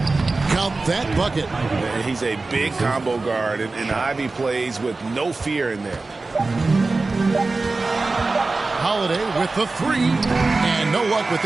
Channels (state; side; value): quieter; left; 3.6 dB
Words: Count that bucket. He's a big combo guard, and Ivy plays with no fear in there. Holiday with the 3, and no luck with